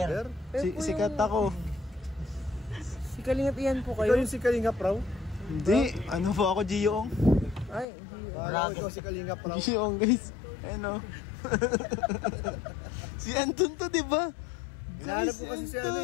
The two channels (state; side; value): drops out; right; at 7.9 s